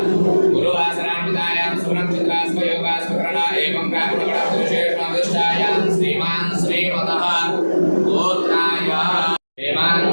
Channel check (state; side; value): inverted; both; correlation -1.00